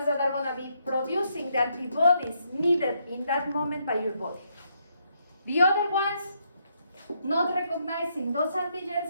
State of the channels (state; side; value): inverted; both; correlation -0.76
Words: that are going to be producing the antibodies needed in that moment by your body. The other ones, not recognizing those